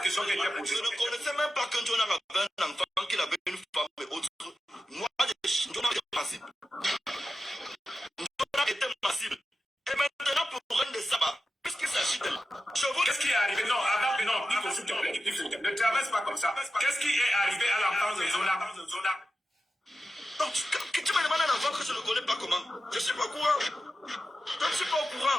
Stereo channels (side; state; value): both; normal; correlation 0.92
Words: qui était posée. Je ne connaissais même pas qu'un Jonan avait un enfant, qu'il avait une femme et autres. Moi, Jonan était massive. Jonan était massive. Et maintenant, pour un de sabbat, puisqu'il s'agit de... Qu'est-ce qui est arrivé? Non, avant, non, Pifo, s'il te plaît, Pifo, ne traverse pas comme ça. Qu'est-ce qui est arrivé à l'enfant de Jonan? Donc, tu me demandes un enfant que je ne connais pas comment? Je ne suis pas au courant. Je ne suis pas au